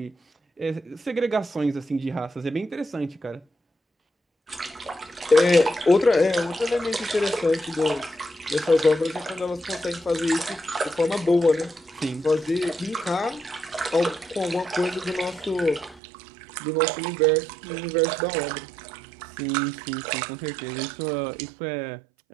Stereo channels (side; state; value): left; drops out; at 16.0 s